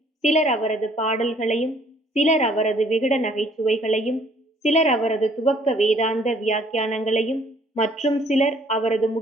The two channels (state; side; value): normal; both; correlation 0.60